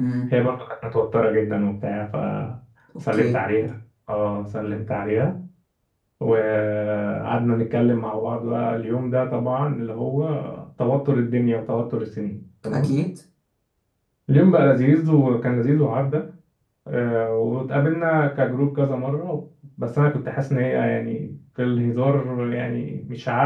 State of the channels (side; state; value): both; identical; correlation 1.00